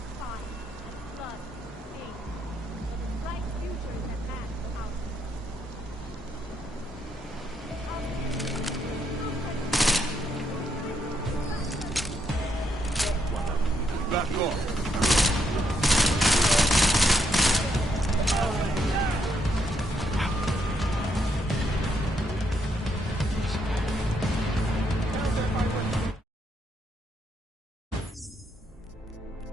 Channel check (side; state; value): both; normal; correlation 0.76